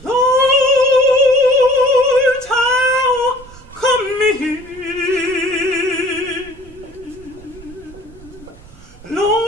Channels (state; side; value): noise; right; rumble, 21 dB below the sound